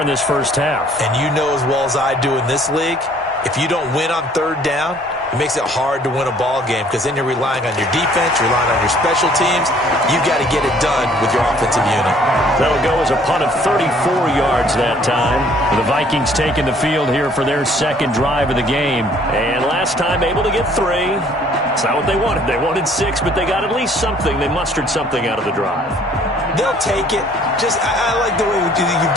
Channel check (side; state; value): both; normal; correlation 0.58